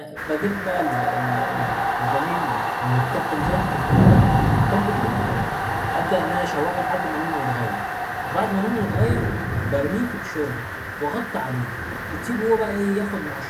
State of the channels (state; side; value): identical; both; correlation 1.00